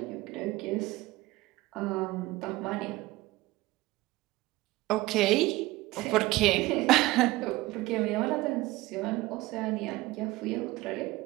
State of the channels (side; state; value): left; quieter; 18.9 dB